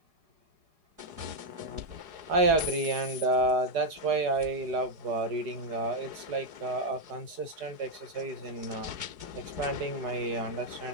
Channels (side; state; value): left; late; 4.8 ms